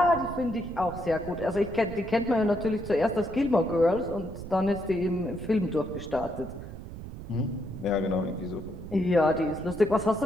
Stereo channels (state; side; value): noise; right; rumble, 11 dB below the sound